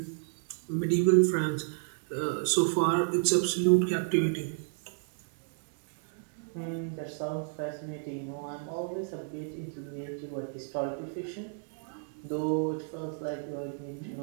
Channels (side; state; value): left; silent; digital silence